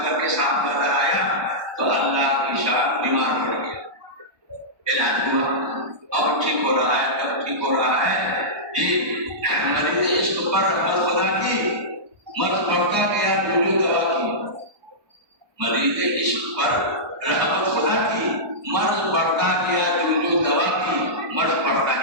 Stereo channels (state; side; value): late; left; 1.2 ms